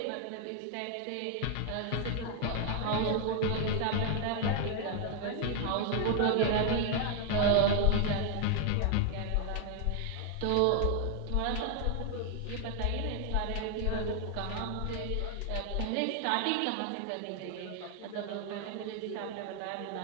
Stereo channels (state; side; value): different; both; correlation 0.00